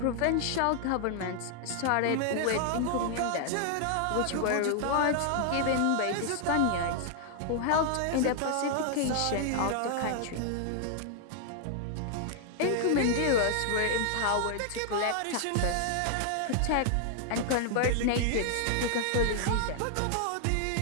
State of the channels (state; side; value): different; both; correlation 0.00